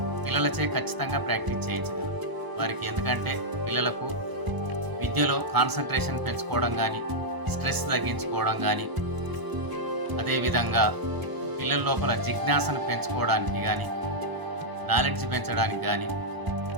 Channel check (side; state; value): left; late; 1.0 ms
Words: పిల్లలచే ఖచ్చితంగా ప్రాక్టీస్ చేయించగలరు వారికి. ఎందుకంటే పిల్లలకు విద్యలో కాన్సన్ట్రేషన్ పెంచుకోవడం కానీ, స్ట్రెస్ తగ్గించుకోవడం కానీ, అదేవిధంగా పిల్లల లోపల జిజ్ఞాసను పెంచుకోవడానికి కానీ, నాలెడ్జ్ పెంచడానికి కానీ